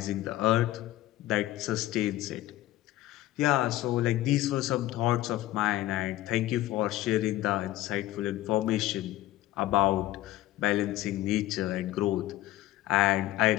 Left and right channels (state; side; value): quieter; right; 15.5 dB